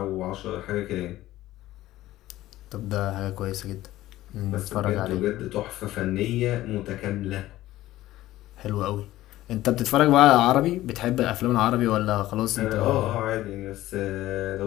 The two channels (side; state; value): right; quieter; 15.5 dB